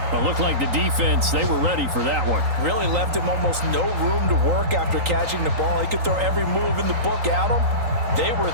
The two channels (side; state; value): left; late; 3.8 ms